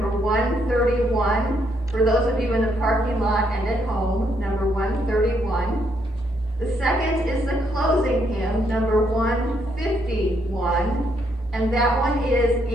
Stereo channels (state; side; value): normal; both; correlation 0.74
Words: 131, for those of you in the parking lot and at home, number 131. The second is the closing hymn, number 151, and that one is